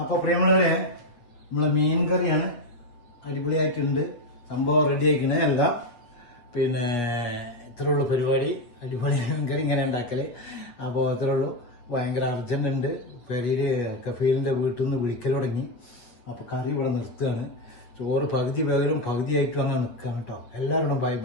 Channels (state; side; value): late; right; 8.3 ms